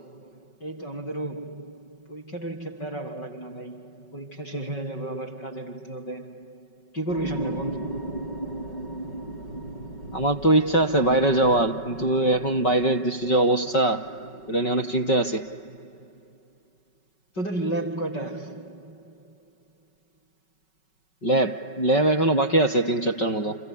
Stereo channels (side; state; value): right; late; 5.3 ms